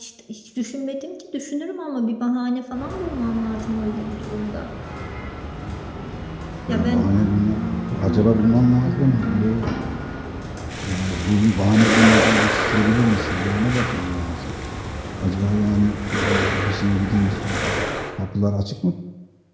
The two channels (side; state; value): both; identical; correlation 1.00